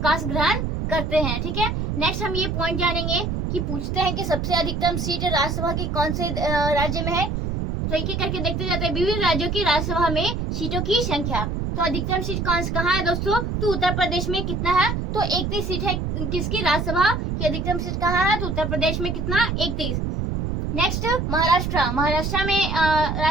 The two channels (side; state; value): right; noise; rumble, 2 dB below the sound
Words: ग्रहण करते हैं, ठीक है। नेक्स्ट हम ये पॉइंट जानेंगे कि पूछते हैं कि सबसे अधिकतम सीट राज्यसभा की कौन से राज्य में है। तो एक एक करके देखते जाते हैं विभिन्न राज्यों की राज्यसभा में सीटों की संख्या। तो अधिकतम सीट कहाँ है दोस्तों, तो उत्तर प्रदेश में कितना है, तो 31 सीट है किसकी, राज्यसभा की अधिकतम सीट कहाँ है, तो उत्तर प्रदेश में कितना, 31। नेक्स्ट महाराष्ट्र में